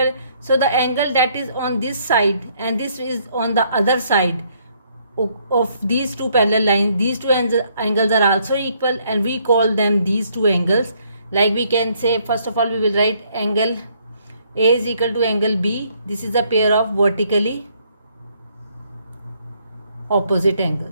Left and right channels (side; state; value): both; inverted; correlation -0.68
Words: So the angle that is on this side and this is on the other side of these two parallel lines, these two angles are also equal, and we call them these two angles. Like we can say, first of all we will write angle A is equal to angle B. This is a pair of vertically opposite